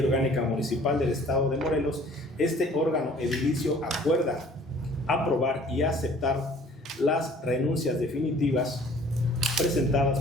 Orgánica Municipal del Estado de Morelos, este órgano edilicio acuerda aprobar y aceptar las renuncias definitivas presentadas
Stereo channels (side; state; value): both; normal; correlation 0.53